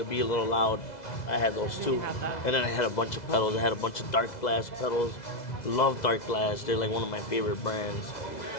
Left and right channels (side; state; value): right; late; 2.0 ms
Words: be a little loud, I had those too. And then I had a bunch of pedals. I had a bunch of dark glass pedals. Love dark glass. They're like one of my favorite brands.